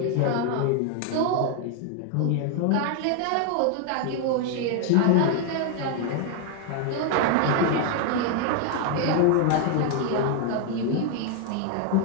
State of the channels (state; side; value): different; both; correlation 0.00